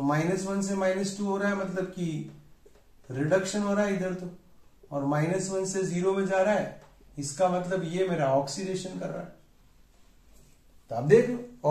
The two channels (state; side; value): identical; both; correlation 1.00